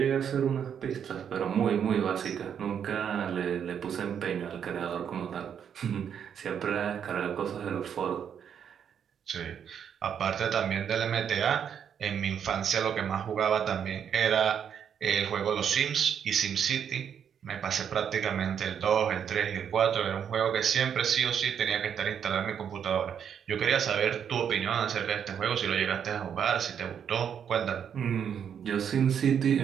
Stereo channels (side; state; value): left; quieter; 8.2 dB